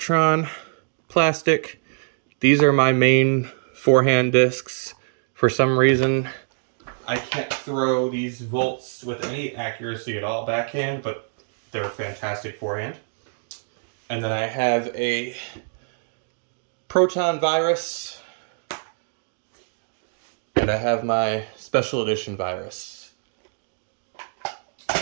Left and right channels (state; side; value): silent; left; digital silence